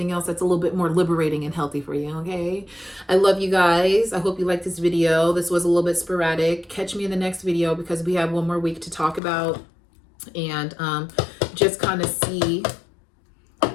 else that's a little bit more liberating and healthy for you? Okay. I love you guys. I hope you liked this video. This was a little bit sporadic. Catch me in the next video because we have one more week to talk about and just kind of see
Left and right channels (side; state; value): right; drops out; at 9.2 s